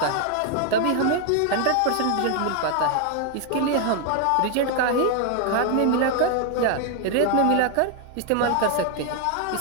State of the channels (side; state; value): both; different; correlation 0.00